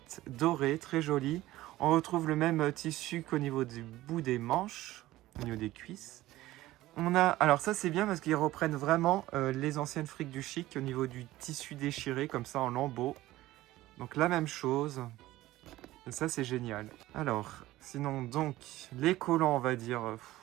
dorées, très jolies. On retrouve le même tissu qu'au niveau du bout des manches, au niveau des cuisses. On a, alors ça c'est bien parce qu'ils reprennent vraiment les anciennes friques du chic au niveau du tissu déchiré, comme ça en lambeaux. Donc la même chose. Et ça c'est génial. Alors, sinon donc, les collants on va dire,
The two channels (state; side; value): quieter; left; 16.5 dB